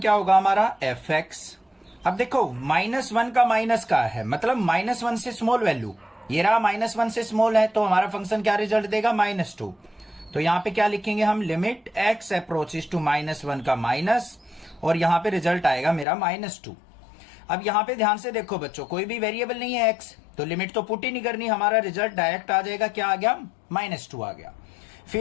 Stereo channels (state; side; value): drops out; right; at 16.1 s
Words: होगा हमारा, एफ एक्स। अब देखो -1 का माइनस का है, मतलब -1 से स्मॉल वैल्यू, ये रहा -1 से स्मॉल है, तो हमारा फंक्शन क्या रिजल्ट देगा, -2। तो यहां पे क्या लिखेंगे हम, लिमिट x अप्रोचेस टू -1 का माइनस, और यहां पे रिजल्ट आएगा मेरा -2। अब यहां पे ध्यान से देखो बच्चों, कोई भी वेरिएबल नहीं है x, तो लिमिट तो पुट ही नहीं करनी, हमारा रिजल्ट डायरेक्ट आ जाएगा, क्या आ गया, -2 आ गया।